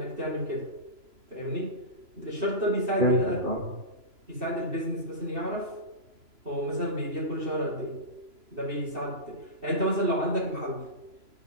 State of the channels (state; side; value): late; left; 3.0 ms